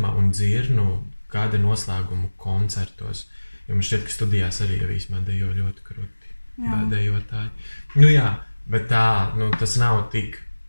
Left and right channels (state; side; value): inverted; both; correlation -1.00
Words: un dzirnu kāda noslēguma koncertos, jo man šķiet, ka studijās arī jau īsmā dejo ļoti kruti dejotāji. Nu jā, bet tā, nu, tas nav tik